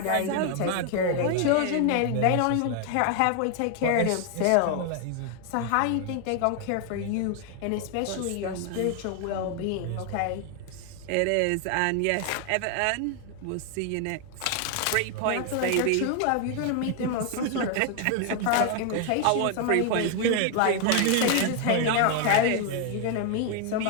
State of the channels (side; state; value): both; different; correlation 0.00